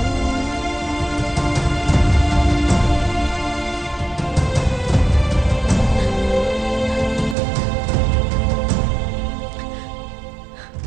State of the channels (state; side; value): drops out; left; at 7.4 s